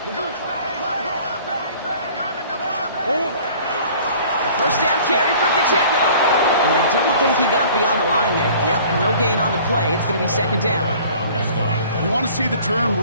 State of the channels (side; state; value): both; inverted; correlation -0.49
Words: A first down carry for Pacheco. And I don't think he got beyond the line there. Yep, no gain on the play. It's going to be 2nd down. You want to see the term